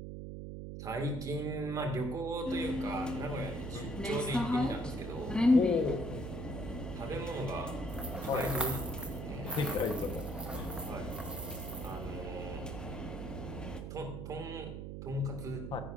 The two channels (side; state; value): right; noise; hum, 7 dB below the sound